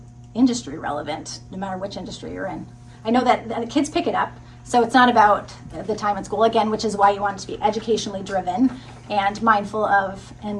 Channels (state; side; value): identical; both; correlation 1.00